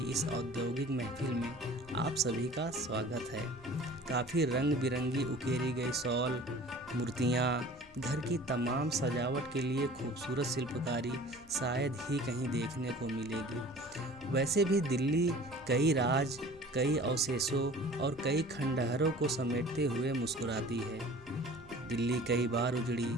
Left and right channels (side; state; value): both; normal; correlation 0.45